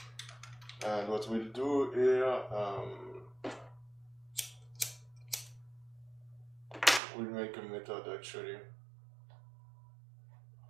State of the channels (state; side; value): drops out; left; at 7.0 s